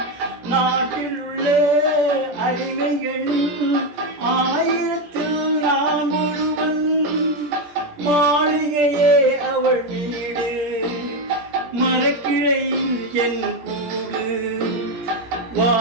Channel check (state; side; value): late; left; 17 ms